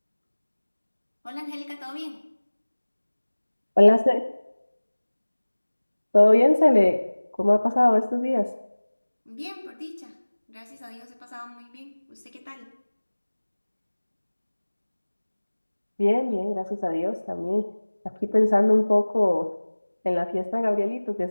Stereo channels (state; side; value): inverted; both; correlation -1.00